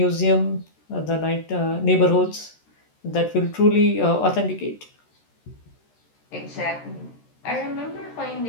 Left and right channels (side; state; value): right; late; 13 ms